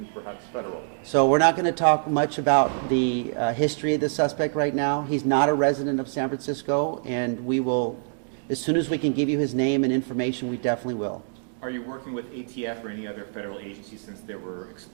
perhaps federal? So we're not going to talk much about the history of the suspect right now. He's not a resident of San Francisco, and we will, as soon as we can give you his name and information, we definitely will. Are you working with ATF or any other federal agency since there were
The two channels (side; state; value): left; silent; digital silence